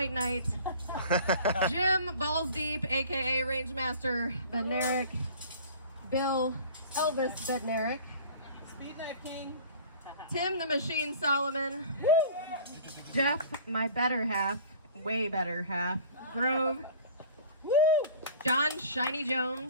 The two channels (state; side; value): inverted; both; correlation -0.45